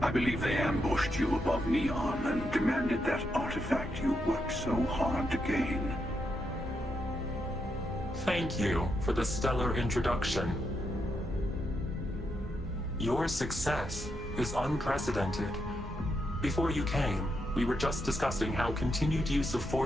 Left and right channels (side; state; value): both; normal; correlation 0.82